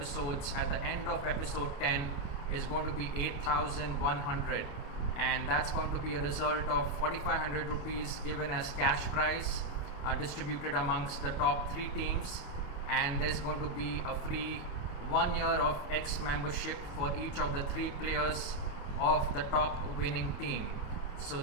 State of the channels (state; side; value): late; right; 28 ms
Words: at the end of episode 10 is going to be 8,100, and that's going to be a result of 4,500 rupees given as cash prize, distributed amongst the top 3 teams, and there's going to be a free 1 year of X membership for each of the 3 players of the top winning team. So